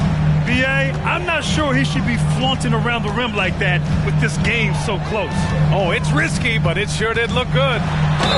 B.A., I'm not sure he should be flaunting around the rim like that with this game so close. Oh, it's risky, but it sure did look good.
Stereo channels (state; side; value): identical; both; correlation 1.00